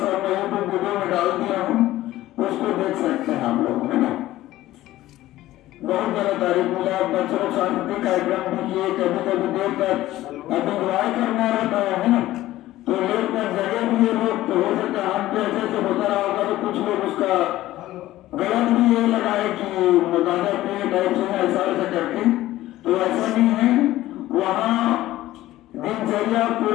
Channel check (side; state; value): right; quieter; 15.5 dB